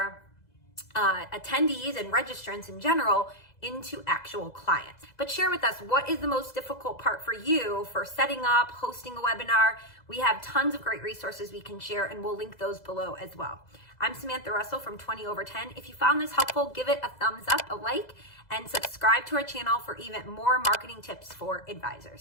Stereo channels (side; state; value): right; late; 2.0 ms